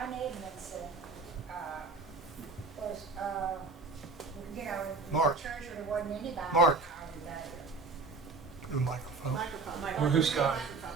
Edmondson, was, Mark. church where there wasn't anybody. Mark. over there. The microphone. Or who's got it?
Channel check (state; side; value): quieter; left; 3.9 dB